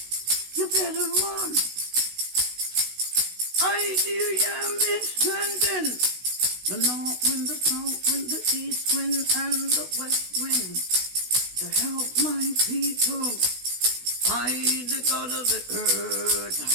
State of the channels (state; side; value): late; left; 16 ms